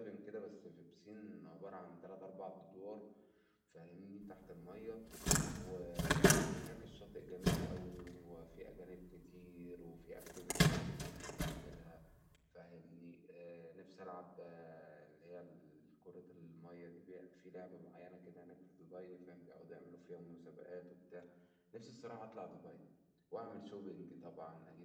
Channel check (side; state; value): both; identical; correlation 1.00